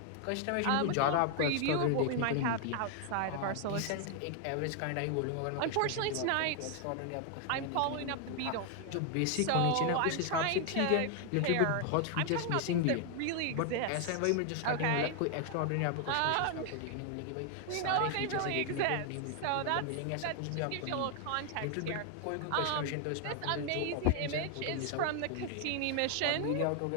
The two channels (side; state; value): both; different; correlation 0.00